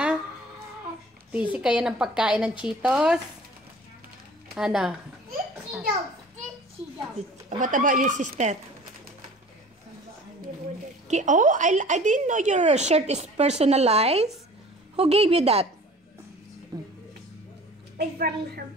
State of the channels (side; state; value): both; normal; correlation 0.45